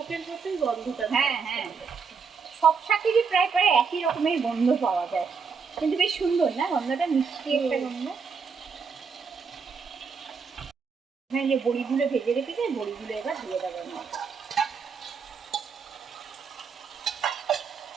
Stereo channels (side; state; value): left; quieter; 5.6 dB